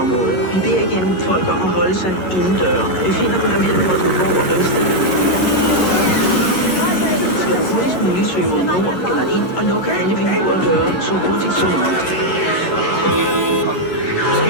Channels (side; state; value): right; late; 11 ms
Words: Vi beder igen folk om at holde sig indendøre. Vi finder på der mellem Vordingborg og Ringsted. Skal du hurtigst muligt søge mod nord eller ind og lukke alle vinduer og døre så hurtigt som muligt.